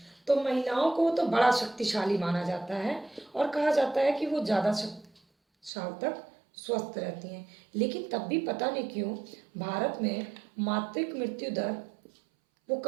तो महिलाओं को तो बड़ा शक्तिशाली माना जाता है और कहा जाता है कि वो ज़्यादा साल तक स्वस्थ रहती हैं। लेकिन तब भी पता नहीं क्यों भारत में मातृत्व मृत्यु दर वो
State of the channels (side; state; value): left; drops out; at 5.7 s